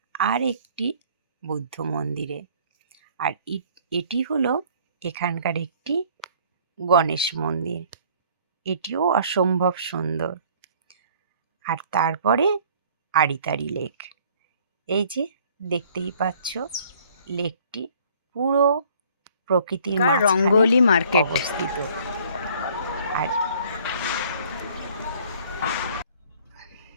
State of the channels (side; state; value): both; inverted; correlation -0.56